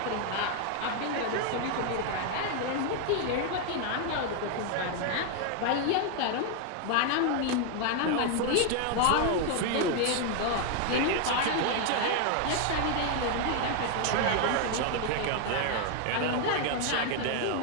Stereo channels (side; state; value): both; different; correlation 0.00